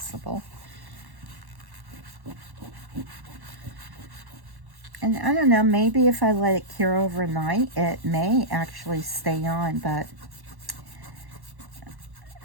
And I don't know, maybe if I let it cure overnight, it may actually stay on, but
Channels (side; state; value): left; late; 1.1 ms